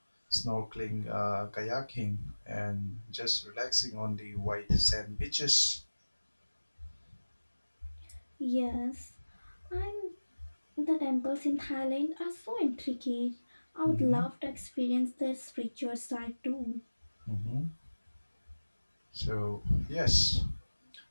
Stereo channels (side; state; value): both; inverted; correlation -1.00